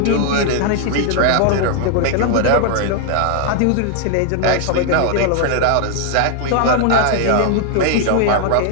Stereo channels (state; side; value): different; both; correlation 0.00